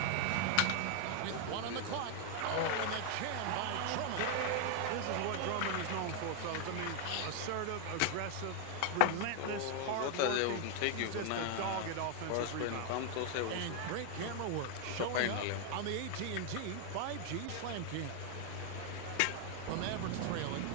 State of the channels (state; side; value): different; both; correlation 0.00